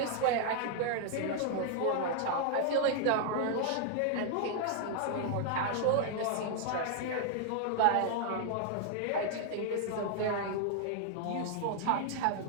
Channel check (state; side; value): different; both; correlation 0.00